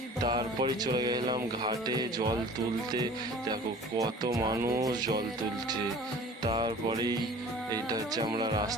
তারপরে চলে গেলাম ঘাটে জল তুলতে। দেখো কত মানুষ জল তুলছে। তারপরেই এইটা হচ্ছে, আমরা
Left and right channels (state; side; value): normal; both; correlation 0.45